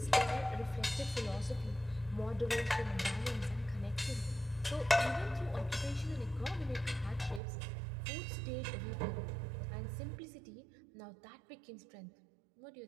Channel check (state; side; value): drops out; left; at 7.4 s